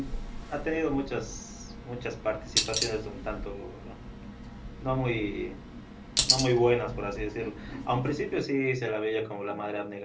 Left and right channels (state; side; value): identical; both; correlation 1.00